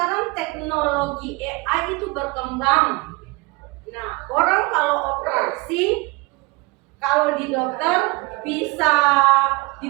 teknologi AI itu berkembang. Nah, orang kalau operasi, kalau di dokter bisa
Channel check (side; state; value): left; quieter; 25.3 dB